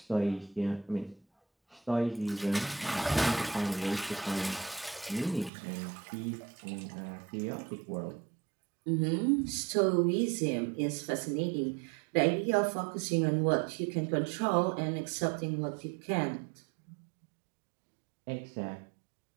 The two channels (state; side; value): drops out; left; at 5.5 s